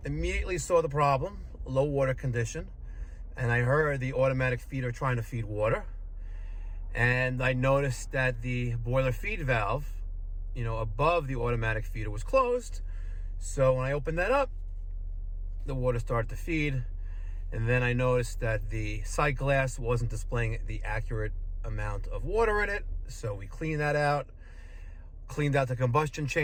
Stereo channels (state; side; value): identical; both; correlation 1.00